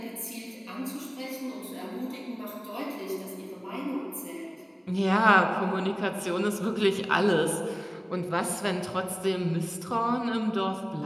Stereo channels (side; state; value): both; identical; correlation 1.00